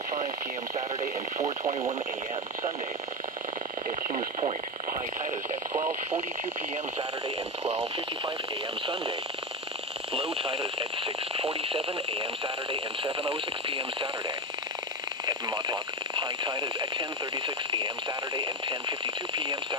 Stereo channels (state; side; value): normal; both; correlation 0.18